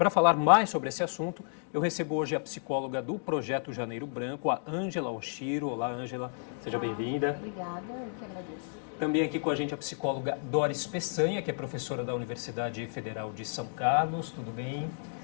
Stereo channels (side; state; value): right; silent; digital silence